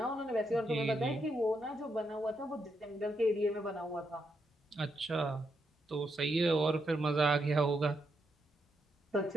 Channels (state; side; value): normal; both; correlation 0.80